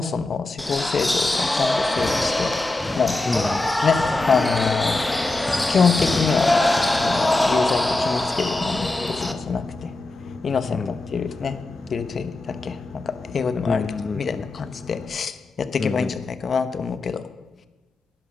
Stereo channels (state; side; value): quieter; right; 3.1 dB